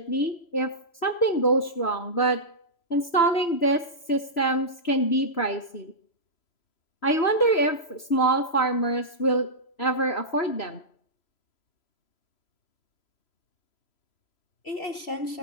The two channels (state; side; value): late; right; 3.0 ms